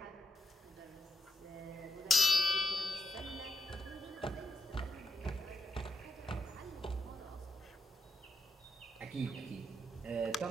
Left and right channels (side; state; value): both; normal; correlation 0.82